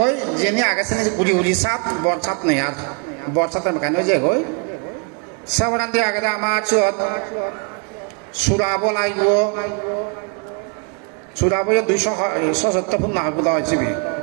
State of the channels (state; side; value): quieter; left; 35.3 dB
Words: যেনি আগাছে গুড়ি গুড়ি সাত বর সাত নেই আর বর সাতটা বেখানে হয়ে যায় গই সেবরান দিয়ে আগে আমার চুত সুরাব লাগব সুরাব 270 ফুট না বোধ হয়েছে